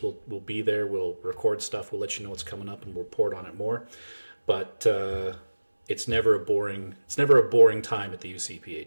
we'll be there. We'll record stuff. We'll let you know what's coming up, and we'll report on it more. But it's never a boring time at the UCP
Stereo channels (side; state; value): both; inverted; correlation -1.00